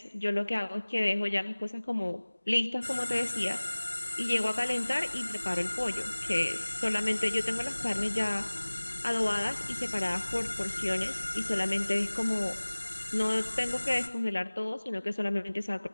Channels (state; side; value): inverted; both; correlation -1.00